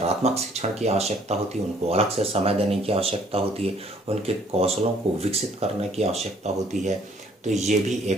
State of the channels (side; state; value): both; normal; correlation 0.61